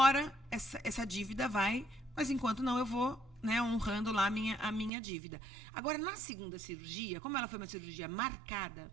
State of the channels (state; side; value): drops out; left; at 4.9 s